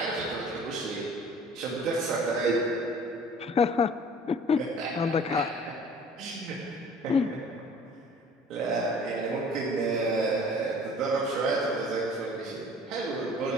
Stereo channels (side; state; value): both; normal; correlation 0.48